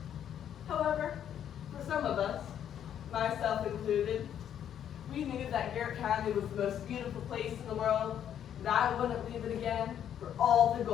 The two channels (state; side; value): quieter; right; 9.7 dB